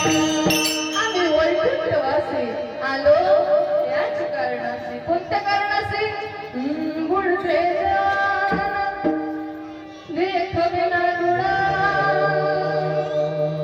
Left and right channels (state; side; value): identical; both; correlation 1.00